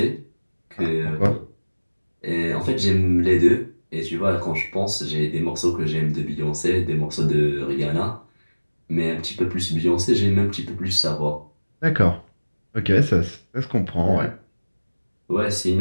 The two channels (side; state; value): both; inverted; correlation -1.00